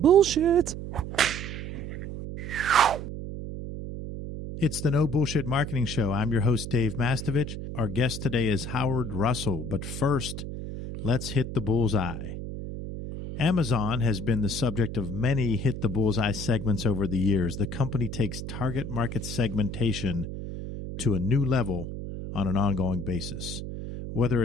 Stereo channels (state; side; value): noise; right; hum, 7 dB below the sound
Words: It's the No Bullshit Marketing Show. I'm your host, Dave Mastovich. Our guest today is Howard Russell. But first, let's hit the bullseye. Amazon has been the subject of many hit the bullseye segments over the years. The company takes target market segmentation to a new level on an ongoing basis. Whether